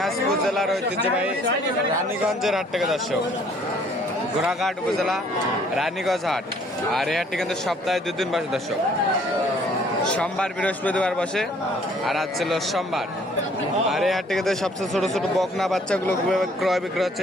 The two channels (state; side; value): normal; both; correlation 0.59